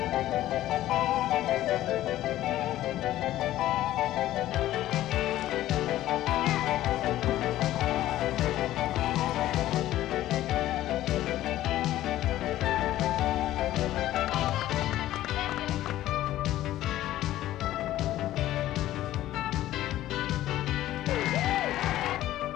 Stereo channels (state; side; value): quieter; right; 14.2 dB